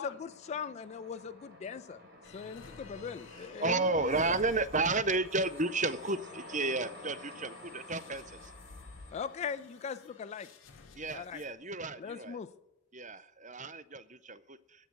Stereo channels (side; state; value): both; normal; correlation 0.02